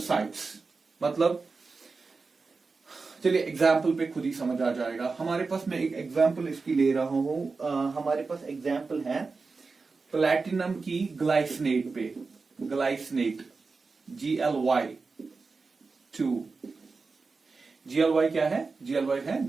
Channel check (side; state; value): left; quieter; 4.3 dB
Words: मतलब चलिए एग्जाम्पल पे खुद ही समझ आ जाएगा। हमारे पास, मैं एक एग्जाम्पल इसकी ले रहा हूं, हमारे पास एग्जाम्पल है प्लैटिनम की ग्लाइसिनेट पे। Glycinate, GLY2। GLY क्या है? GLY है